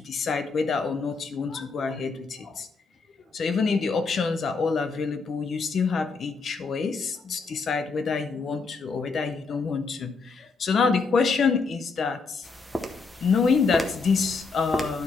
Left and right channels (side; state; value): right; quieter; 4.5 dB